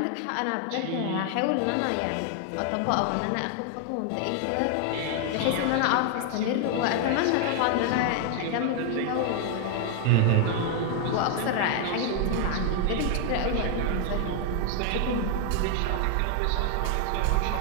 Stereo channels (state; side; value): different; both; correlation 0.00